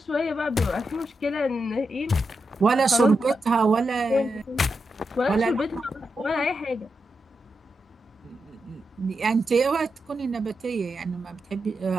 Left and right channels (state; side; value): normal; both; correlation 0.87